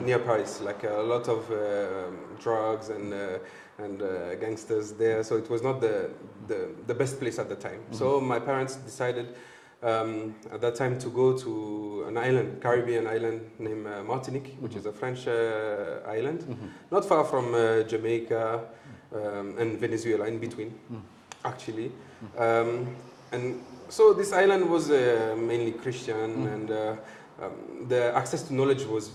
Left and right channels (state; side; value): identical; both; correlation 1.00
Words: Paris, like a lot of drugs and gangsters there, so it was not the best place at the time. So my parents decided at that time to go to an island, Caribbean island named Martinique, which is a French island, not far from Jamaica and Venezuela, in between, actually. And so this island was mainly Christian, and the access to knowledge was